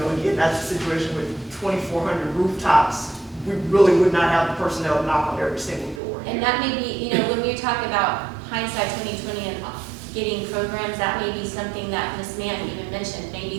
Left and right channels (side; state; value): left; drops out; at 6.0 s